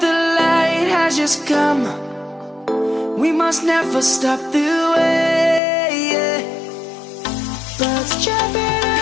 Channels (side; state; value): right; drops out; at 5.6 s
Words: the light has just come. We must never stop the way. Birds jumping